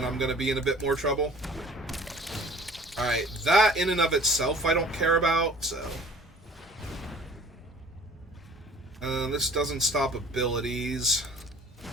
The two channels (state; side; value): normal; both; correlation 0.49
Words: I'm going to be in a bit more trouble. Alright, that in and of itself I don't care about, so... this doesn't stop abilities.